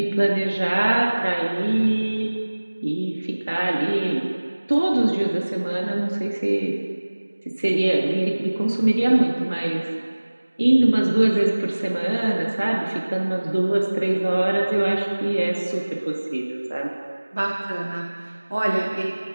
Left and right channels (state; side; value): inverted; both; correlation -1.00